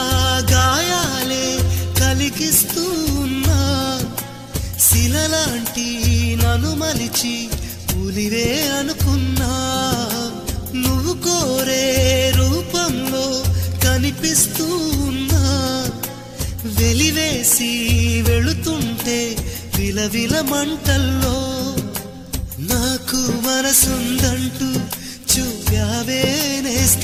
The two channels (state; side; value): identical; both; correlation 1.00